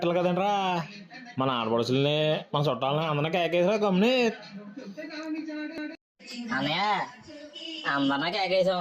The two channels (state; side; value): identical; both; correlation 1.00